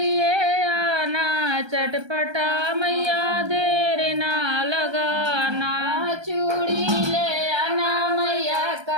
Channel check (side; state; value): left; late; 1.3 ms